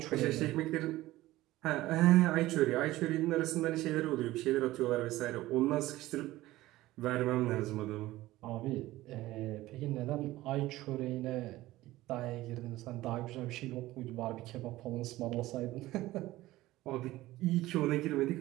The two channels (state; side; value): quieter; left; 17.0 dB